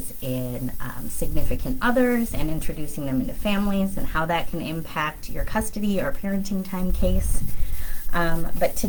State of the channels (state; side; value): identical; both; correlation 1.00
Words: in significant others and introducing them into families and how that can impact your custody or parenting time case. But